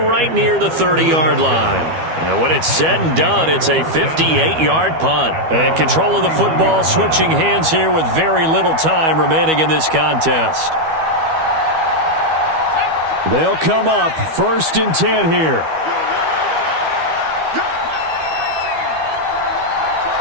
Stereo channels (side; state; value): left; late; 12 ms